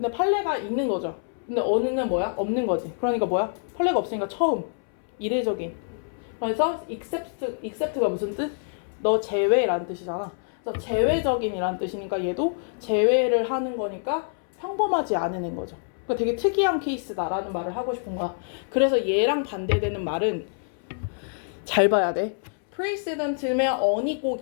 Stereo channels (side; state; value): right; silent; 61 dB below the other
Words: 판례가 있는 거죠. 근데 어느는 뭐야? 없는 거지. 그러니까 뭐야? 판례가 없으니까 처음, 이례적인. 그래서 except가 무슨 뜻? 너 제외라는 뜻이잖아. 그래서 제외적인이라는 뜻이니까 얘도 제외를 하는 거니까 평범하지 않은 거죠. 그러니까 되게 특이한 케이스다라는 말을 하고 싶은 거야. 그래서 얘랑 반대되는 말은 잘 봐야 돼. precedent면 on이 꼭